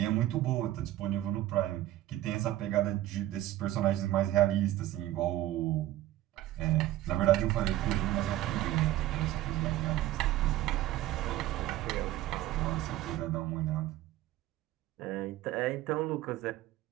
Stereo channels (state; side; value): quieter; left; 14.6 dB